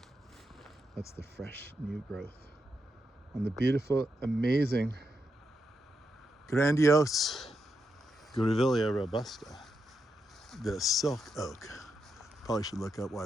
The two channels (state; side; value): normal; both; correlation 0.85